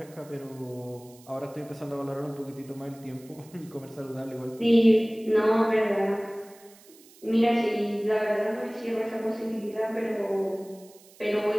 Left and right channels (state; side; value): noise; right; hiss, 25 dB below the sound